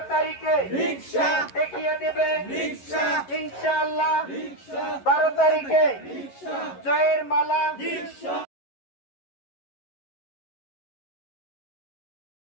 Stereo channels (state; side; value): late; right; 11 ms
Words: তারিখে রিকশা দেখিয়ে দেবে রিকশা ইনশাআল্লাহ রিকশা 12 তারিখে রিকশা জয়ের মালা রিকশা